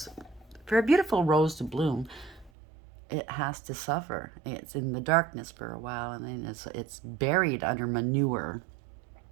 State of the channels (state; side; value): drops out; left; at 2.5 s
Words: for a beautiful rose to bloom, it has to suffer. It's in the darkness for a while, and then it's buried under manure.